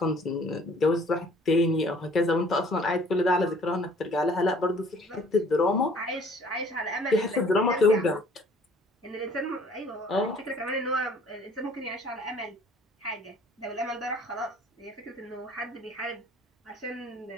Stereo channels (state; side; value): normal; both; correlation 0.55